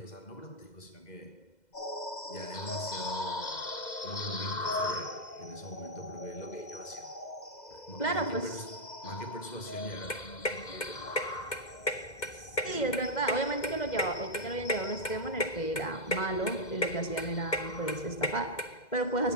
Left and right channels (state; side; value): late; right; 2.0 ms